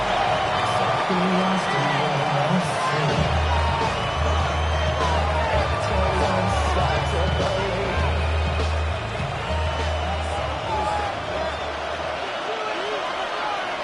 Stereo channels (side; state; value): both; identical; correlation 1.00